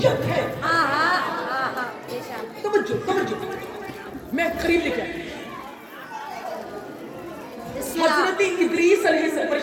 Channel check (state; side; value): identical; both; correlation 1.00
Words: ہے. توجہ, میں قریب لے کے آئی. حضرت حضرت ادریس علیہ السلام،